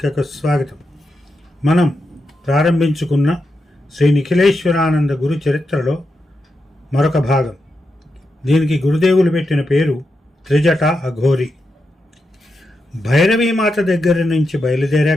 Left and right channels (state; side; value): normal; both; correlation 0.86